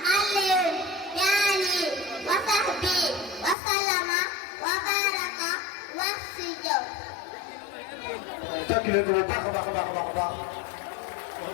alayhi wa sahbi wa sallama wa baraka wax si jaw tàkk leen ko bu baax a baax a baax a baax wax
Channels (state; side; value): drops out; right; at 3.6 s